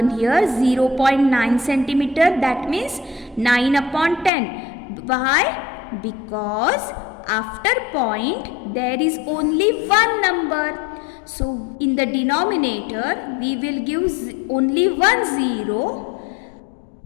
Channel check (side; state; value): right; drops out; at 4.3 s